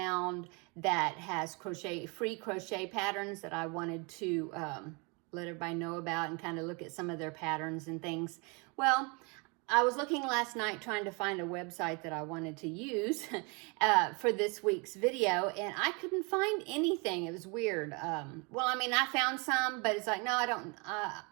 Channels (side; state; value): left; quieter; 31.3 dB